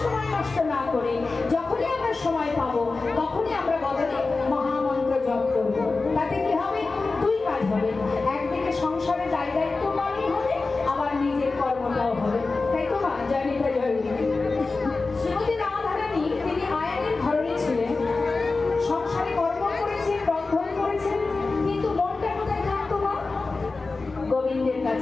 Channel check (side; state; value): right; quieter; 3.8 dB